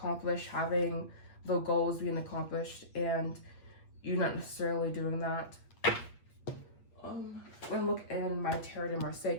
having the goals being accomplished, and you not necessarily doing that. I'm gonna look in my Tarot de Marseille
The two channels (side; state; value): right; late; 8.4 ms